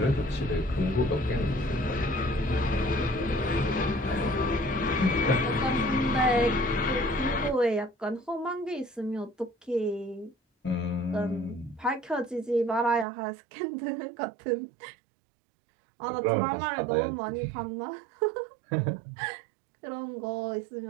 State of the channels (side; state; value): left; drops out; at 13.1 s